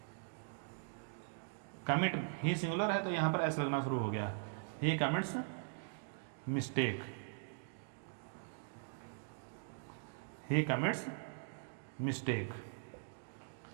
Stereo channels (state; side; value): silent; left; digital silence